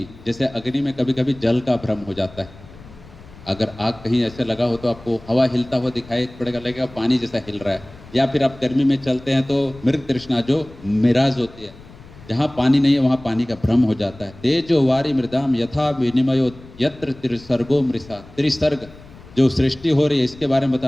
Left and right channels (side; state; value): left; noise; rumble, 20 dB below the sound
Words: जैसे अग्नि में कभी कभी जल का भ्रम हो जाता है। अगर आग कहीं ऐसे लगा हो तो आपको हवा हिलता हुआ दिखाई पड़ेगा, लगेगा पानी जैसा हिल रहा है। या फिर आप गर्मी में चलते हैं तो मृग तृष्णा जो मिराज होती है, जहाँ पानी नहीं है वहाँ पानी का भ्रम हो जाता है। तेजो वारी मृदाम यथा विनिमयो यत्र त्रिसर्गो मृषा, त्रिसर्ग जो सृष्टि हो रही है इसके बारे में